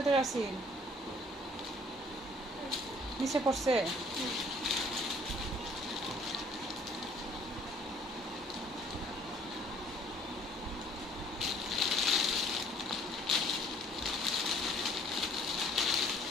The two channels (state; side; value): normal; both; correlation 0.57